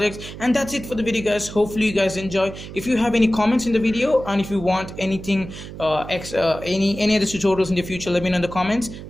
And that's it for the video, guys. Hopefully you guys enjoy. If you have any comments in the video, and if you want anything any other tutorials in the future, let me know in the comments.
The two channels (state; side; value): noise; right; hum, 12 dB below the sound